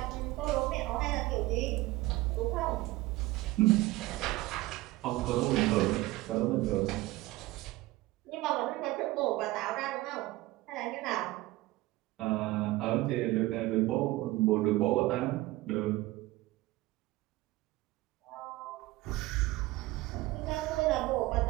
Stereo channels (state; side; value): quieter; left; 18.8 dB